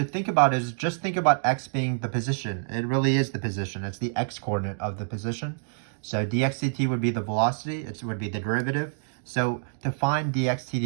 think about is just think about x being the position. It really is the position. It's the x-coordinate of the position. So dxdt would be the velocity. It would be the derivative. So to find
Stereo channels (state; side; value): silent; left; digital silence